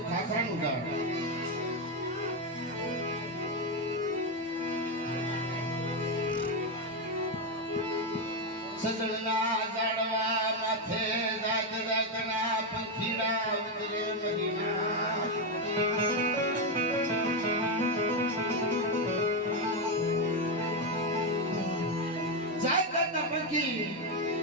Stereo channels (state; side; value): normal; both; correlation 0.07